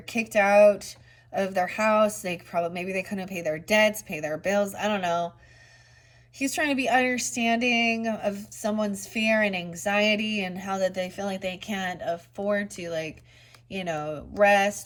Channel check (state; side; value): identical; both; correlation 1.00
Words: kicked out of their house. Maybe they couldn't pay their debts, pay their bills. I don't know. He's trying to be understanding of someone's fear and anxiety, and how that they feel like they can't afford to, like,